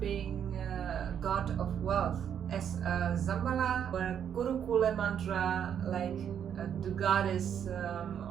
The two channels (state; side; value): quieter; left; 8.7 dB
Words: God of wealth as a Dzambhala or a Gurukula mantra, like the goddess